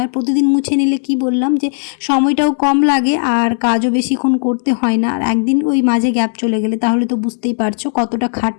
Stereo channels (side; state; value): right; silent; digital silence